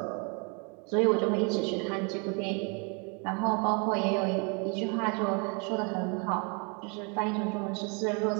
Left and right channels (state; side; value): quieter; left; 34.9 dB